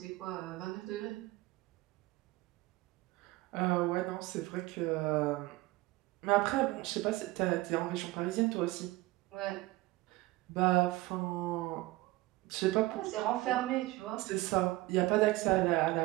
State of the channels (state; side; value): quieter; left; 19.5 dB